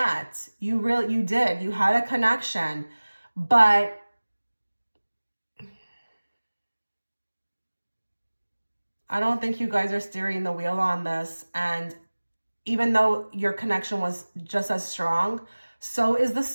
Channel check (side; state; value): both; inverted; correlation -1.00